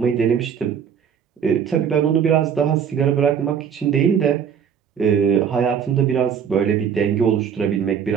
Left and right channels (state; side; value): quieter; left; 7.8 dB